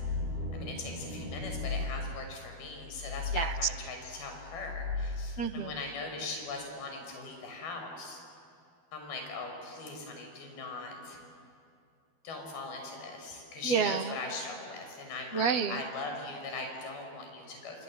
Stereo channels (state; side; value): late; right; 12 ms